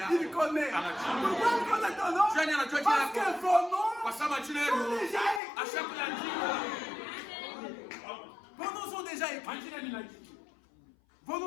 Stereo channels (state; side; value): drops out; right; at 5.4 s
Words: Il connaît. Pourquoi il connaît ton nom? Parce que vos noms sont déjà écrits. Vos